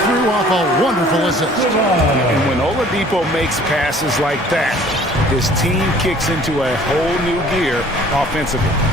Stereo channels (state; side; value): normal; both; correlation 0.53